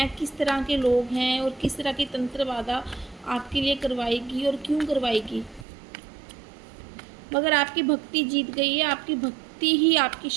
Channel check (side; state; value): left; drops out; at 5.7 s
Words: किस तरह के लोग हैं और किस तरह की तंत्र बाधा आपके लिए करवाएगी और क्यों करवाएगी। मगर आपकी भक्ति जीत गई है, आपकी भक्ति ही आपकी